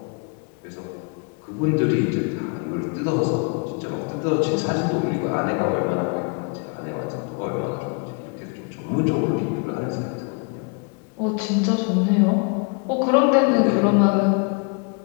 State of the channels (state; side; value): quieter; right; 35.9 dB